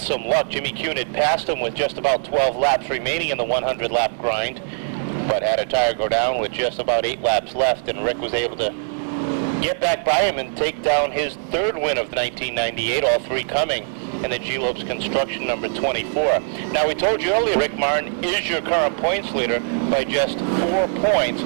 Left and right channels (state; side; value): silent; left; digital silence